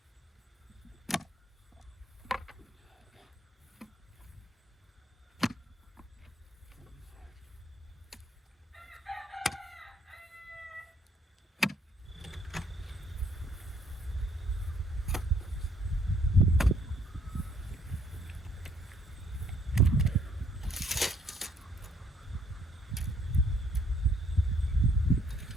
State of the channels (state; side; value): normal; both; correlation 0.65